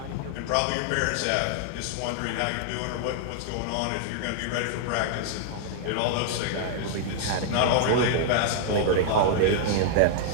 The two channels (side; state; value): both; different; correlation 0.00